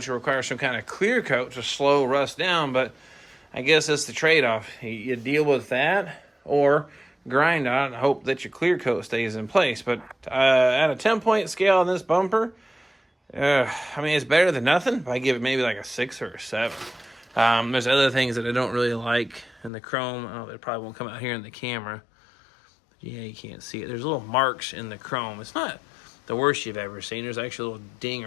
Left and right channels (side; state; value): right; drops out; at 19.7 s